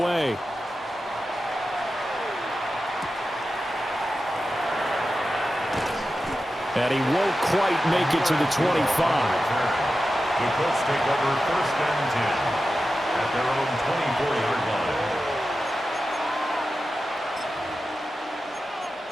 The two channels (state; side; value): normal; both; correlation 0.92